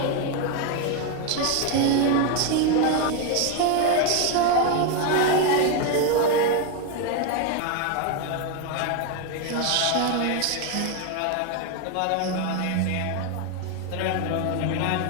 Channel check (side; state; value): both; different; correlation 0.01